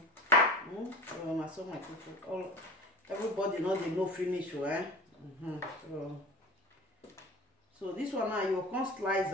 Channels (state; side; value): normal; both; correlation 0.35